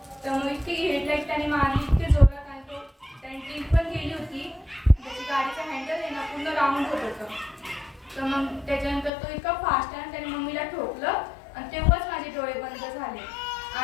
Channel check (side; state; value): right; drops out; at 9.1 s